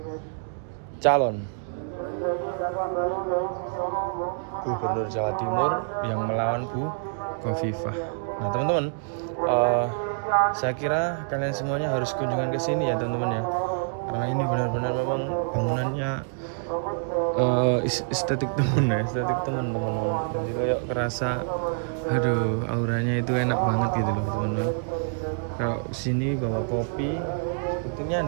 calon Gubernur Jawa Timur yang melawan Bu Khofifah. Nah teman-teman, saya kira kalian semuanya harus kunjungan ke sini ya teman-teman ya, karena ini benar-benar memang bangunannya estetik teman-teman. Nanti kayak kerasa, aduh auranya itu enak banget gitu loh teman-teman. Kalau sini bawa kopi sepertinya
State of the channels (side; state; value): left; silent; digital silence